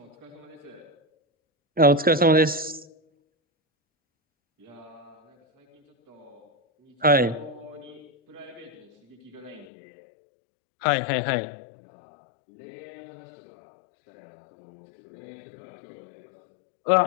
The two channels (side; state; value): right; drops out; at 9.7 s